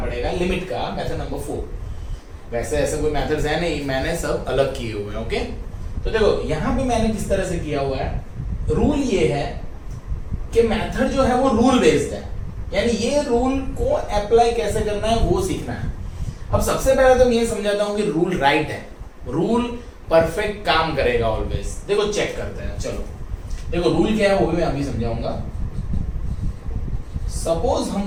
लिमिट का मेथड नंबर 4। वैसे ऐसे कोई मेथड्स है नहीं, मैंने सब अलग किए हुए हैं। ओके, तो देखो यहाँ पे मैंने किस तरह से किया हुआ है, रूल ये है कि मेथड जो है वो रूल बेस्ड है, यानी ये रूल को अप्लाई कैसे करना है वो सीखना है। अब सबसे पहले तो मैं ये समझाता हूँ कि रूल राइट है, रूल परफेक्ट काम करेगा ऑलवेज। देखो चेक करते हैं, चलो देखो रूल क्या है वो भी मैं अभी समझाऊंगा। सपोज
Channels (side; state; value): both; identical; correlation 1.00